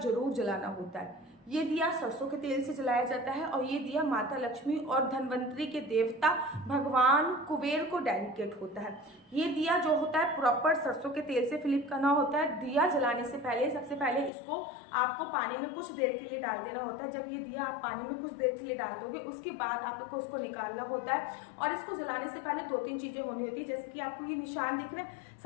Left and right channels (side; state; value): right; drops out; at 14.3 s